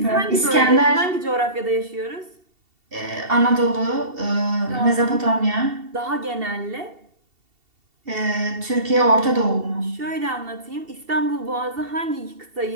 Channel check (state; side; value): late; left; 2.7 ms